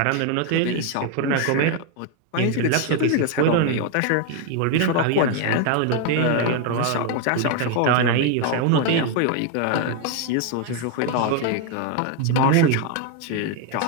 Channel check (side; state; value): both; different; correlation 0.01